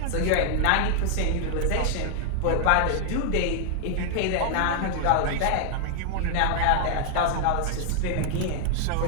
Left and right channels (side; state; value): both; different; correlation 0.00